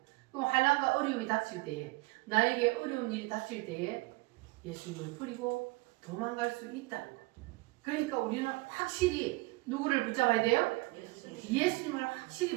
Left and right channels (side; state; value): left; quieter; 22.7 dB